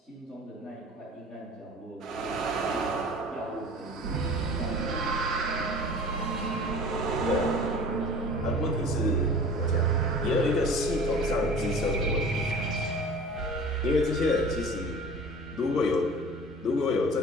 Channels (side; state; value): both; normal; correlation 0.42